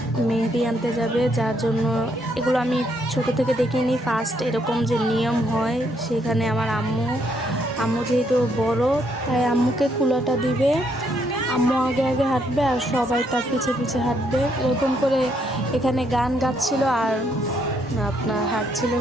মেহেদি আনতে যাবে, যার জন্য এগুলো আমি ছোট থেকে দেখিনি। ফার্স্ট এরকম যে নিয়ম হয়, সেখানে আমার আম্মু যেহেতু বড়, তাই আম্মুকে কুলাটা দিবে। আম্মু আগে আগে হাঁটবে আর সবাই তার পিছে পিছে হাঁটবে। এরকম করে এখানে গান গাচ্ছিল আর আপনার হাঁটছিল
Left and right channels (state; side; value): normal; both; correlation 0.73